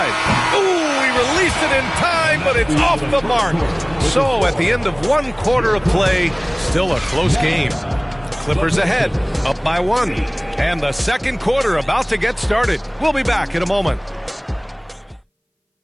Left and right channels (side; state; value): both; identical; correlation 1.00